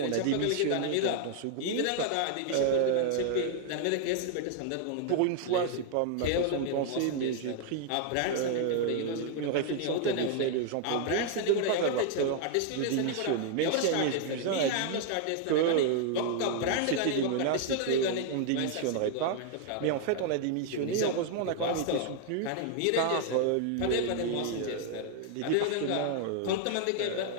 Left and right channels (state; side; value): different; both; correlation 0.00